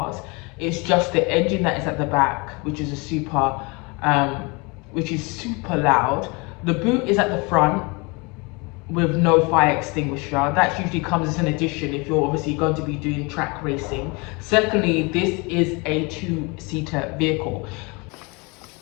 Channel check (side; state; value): right; quieter; 28.4 dB